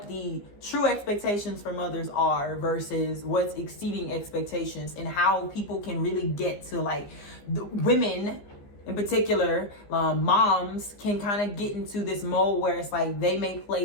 the true expectations for mothers are versus what's exceeding expectations, and how people can really get to, like, the women in particular, moms can kind of get into this mode where it's like they may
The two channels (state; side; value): late; right; 15 ms